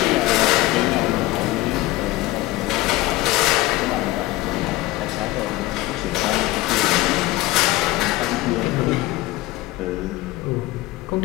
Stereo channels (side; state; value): right; quieter; 18.2 dB